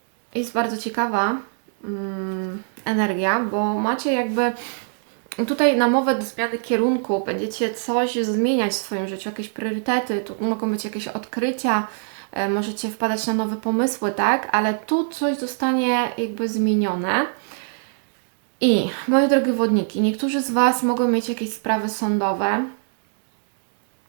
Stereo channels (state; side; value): silent; left; digital silence